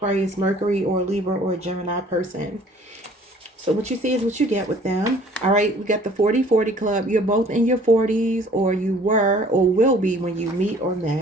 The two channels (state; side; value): normal; both; correlation 0.54